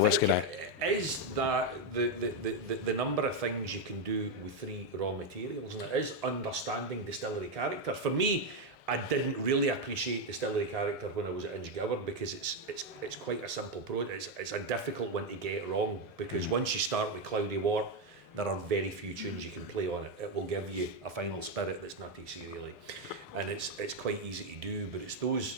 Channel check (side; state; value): both; normal; correlation 0.05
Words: whiskey now? Is that the number of things you can do with 3 raw materials, and it is understanding distillery character. For me, I didn't really appreciate distillery character when I was at Inchgower because it's quite a simple process. It's a difficult one to get wrong because once you start with Cloudy Wort, there are very few tunes you can play on it. It will give you a final spirit that's nutty serially, and it's quite easy to do. But it's